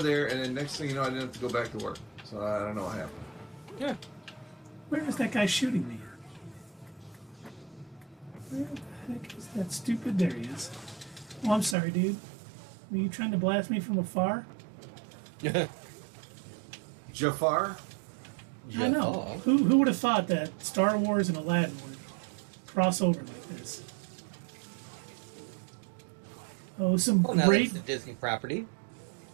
there, and then next thing you know, I didn't have to go back to work. So I don't know what happened. Yeah. Where is that guy shooting me? Where the heck is that stupid? There he is. Oh, I'm sorry, dude. Were you trying to blast me from afar? Jafar? I know. Who would have thought that Star Wars and Aladdin would cross over like this? Oh, some Well, now great... that it's a Disney property,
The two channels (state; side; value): drops out; left; at 11.8 s